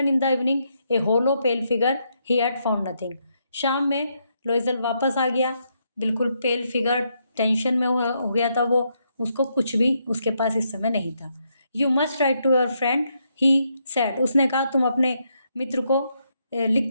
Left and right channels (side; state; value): both; inverted; correlation -0.78